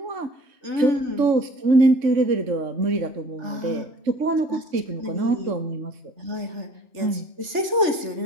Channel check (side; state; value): left; late; 3.3 ms